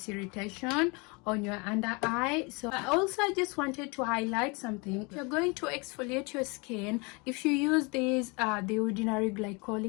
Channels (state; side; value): quieter; right; 29.3 dB